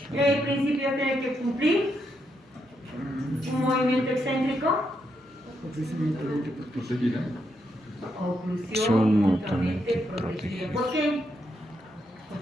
El principio tiene que cumplir un movimiento excéntrico. Oclusión Son mutuamente mutuamente protegida. protegidas. ¿Por qué?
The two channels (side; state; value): both; normal; correlation 0.80